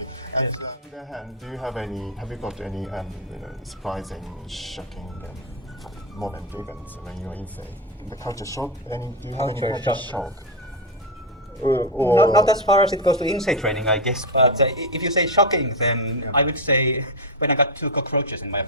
And on the other hand, have you got any, surprising, shocking moment, events when you're insane? The culture shock? Do you have any Culture culture shock. shock? Not as far as it goes to insei training, I guess. But if you say shocking, then I would say when I got 2 cockroaches in my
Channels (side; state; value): both; normal; correlation 0.06